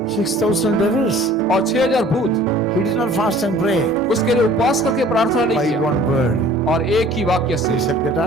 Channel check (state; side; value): normal; both; correlation 0.50